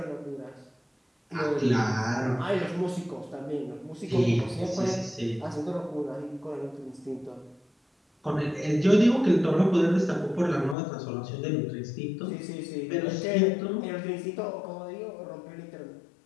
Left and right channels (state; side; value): drops out; right; at 10.8 s